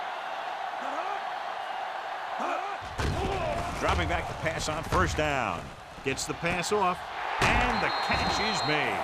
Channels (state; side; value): identical; both; correlation 1.00